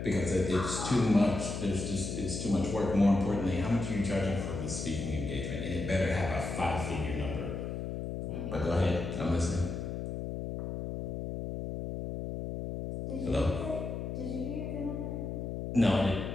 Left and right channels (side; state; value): left; noise; hum, 5 dB below the sound